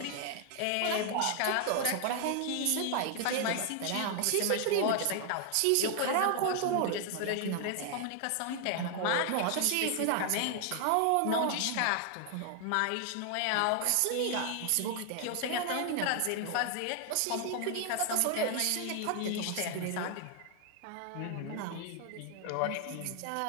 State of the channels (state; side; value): different; both; correlation 0.00